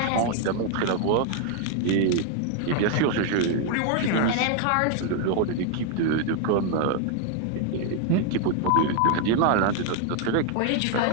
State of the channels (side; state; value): both; different; correlation 0.00